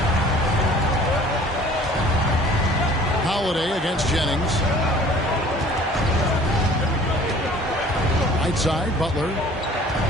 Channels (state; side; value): normal; both; correlation 0.50